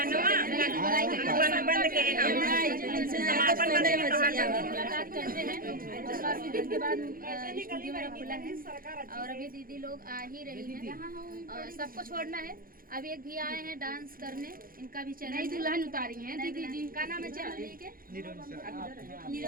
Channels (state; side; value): late; left; 0.42 ms